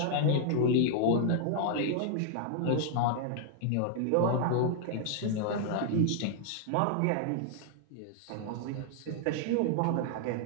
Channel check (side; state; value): both; different; correlation 0.00